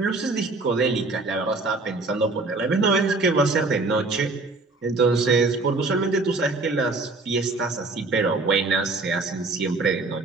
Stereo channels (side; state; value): left; quieter; 3.4 dB